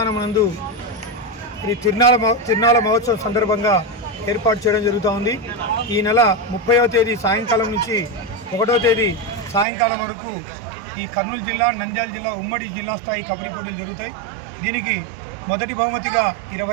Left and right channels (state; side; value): drops out; left; at 9.7 s